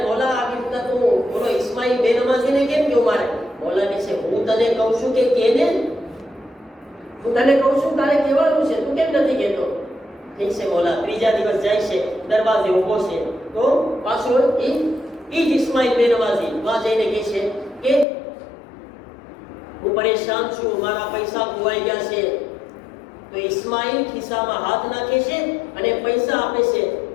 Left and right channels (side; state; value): right; drops out; at 18.1 s